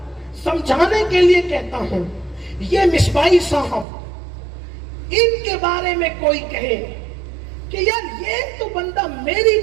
سمجھانے کے لیے کہتا ہوں, یہ مصباحی صاحب ان کے بارے میں کوئی کہے کہ یار یہ تو بندہ میری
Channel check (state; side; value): drops out; left; at 3.9 s